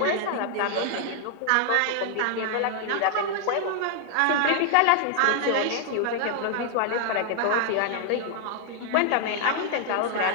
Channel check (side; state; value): both; different; correlation 0.00